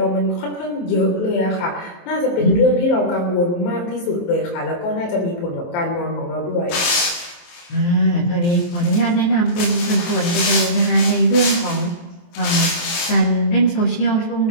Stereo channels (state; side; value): late; right; 23 ms